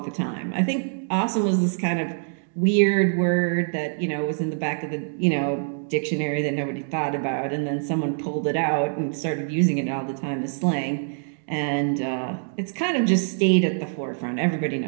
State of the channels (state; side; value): silent; left; digital silence